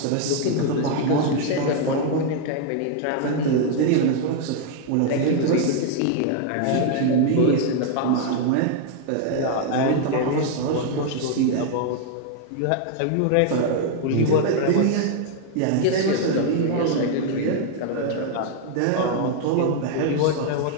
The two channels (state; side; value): different; both; correlation 0.00